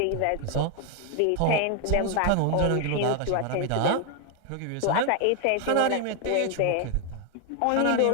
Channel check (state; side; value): different; both; correlation 0.01